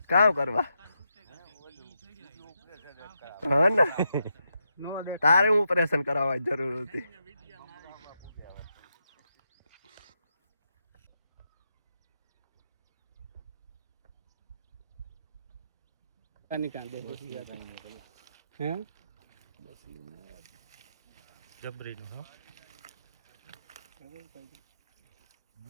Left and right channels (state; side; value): inverted; both; correlation -0.84